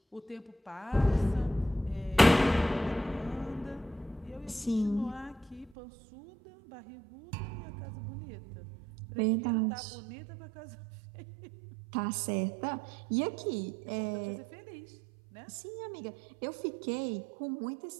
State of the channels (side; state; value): left; drops out; at 5.7 s